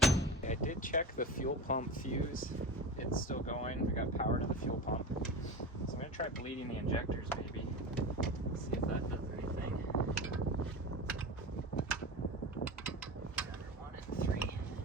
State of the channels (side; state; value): both; normal; correlation 0.28